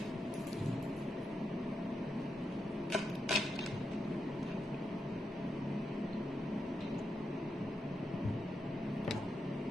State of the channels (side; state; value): both; normal; correlation 0.85